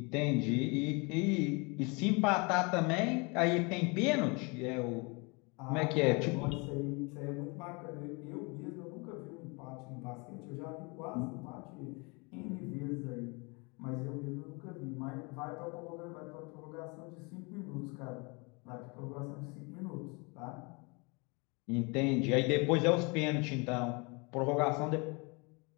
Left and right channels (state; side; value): quieter; right; 29.8 dB